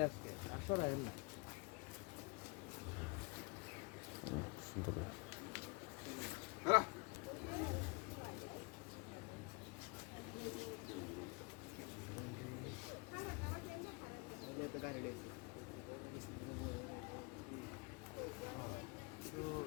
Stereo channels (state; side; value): quieter; right; 29.9 dB